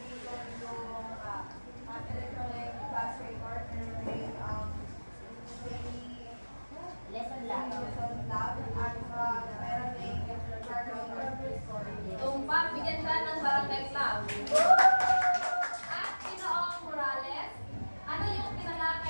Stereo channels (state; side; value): inverted; both; correlation -1.00